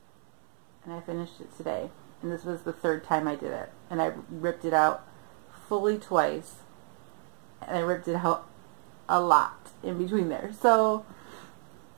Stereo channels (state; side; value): silent; left; 58 dB below the other